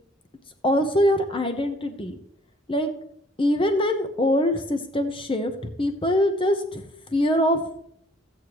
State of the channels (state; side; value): normal; both; correlation 0.59